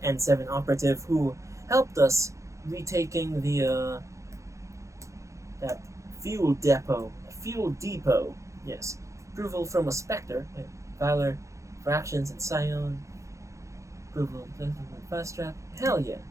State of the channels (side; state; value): left; late; 0.15 ms